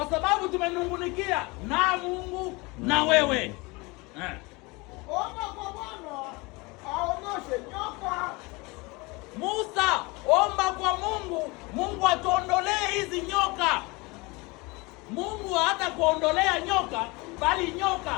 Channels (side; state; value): right; quieter; 25.5 dB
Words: sababu tumenungunikia na Mungu na wewe. Omba kwa Bwana aondoshe nyoka. Musa, omba kwa Mungu, Mungu atuondolee hizi nyoka. Mungu hata kuondolea nyoka, bali